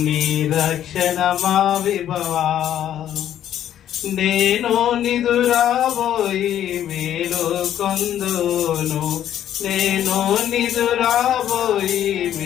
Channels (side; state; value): right; quieter; 10.9 dB